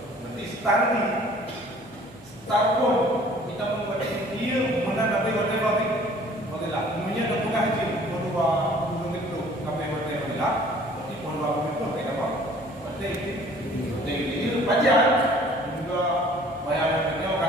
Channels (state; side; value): noise; right; hum, 28 dB below the sound